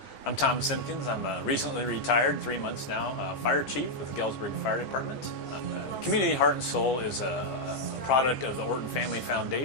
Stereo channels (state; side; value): late; right; 15 ms